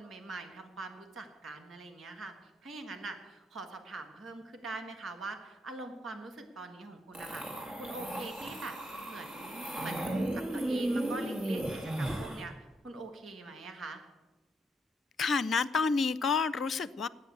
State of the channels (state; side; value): normal; both; correlation 0.76